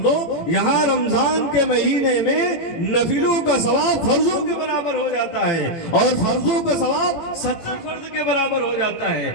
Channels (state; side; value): late; right; 18 ms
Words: یہاں رمضان کے مہینے میں نفلوں کا ثواب فرضوں کے برابر ہو جاتا ہے اور فرضوں کا ثواب 70 فرض کے برابر ہو جاتا ہے.